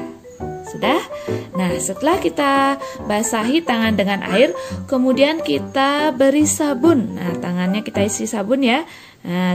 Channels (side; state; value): both; identical; correlation 1.00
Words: sudah? Nah, setelah kita basahi tangan dengan air, kemudian kita beri sabun. Nah, tangannya kita isi sabun ya.